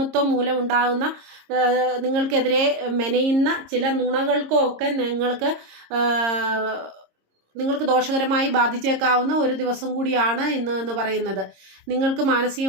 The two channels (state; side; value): late; left; 26 ms